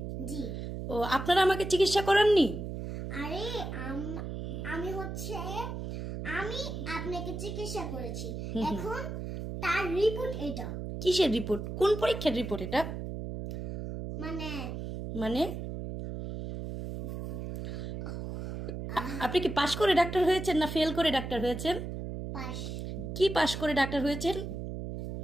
জি। ও, আপনারা আমাকে চিকিৎসা করাননি? আরে আমি আপনাকে চিকিৎসা করেছি, এখন তার রিপোর্ট এটা। কিসের রিপোর্ট? কোন পরীক্ষার রিপোর্ট এটা? মানে আপনি কি পাশ করে ডাক্তার হয়েছেন না ফেল করে ডাক্তার হয়েছেন? পাশ। কি পাশ করে ডাক্তার হয়েছেন?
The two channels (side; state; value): right; noise; hum, 6 dB below the sound